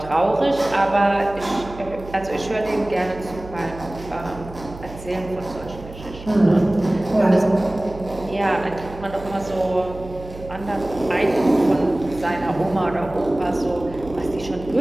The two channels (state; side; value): noise; right; hum, 15 dB below the sound